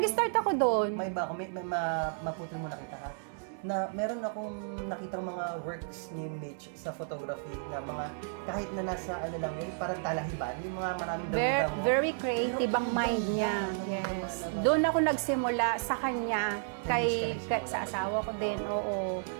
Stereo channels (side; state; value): left; silent; digital silence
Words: ako doon. may iba ako, maputol muna kita ha. Na meron akong nakitang mga works ni Mitch sa photography na mga kahit na nasa ano lang yun, parang talahiban, yung mga maraming damo-damo. Very creative Pero ang ang mind ganda, niya. alam mo, Yes. lumalabas. Doon ako nagsimula sa kanya, Kay Mitch ka nagsimula sa asawa ko din, oo.